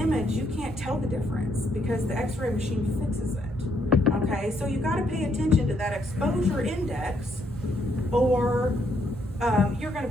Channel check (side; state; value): both; normal; correlation 0.73